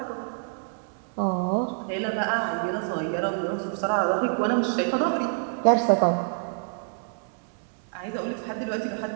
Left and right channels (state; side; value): silent; left; digital silence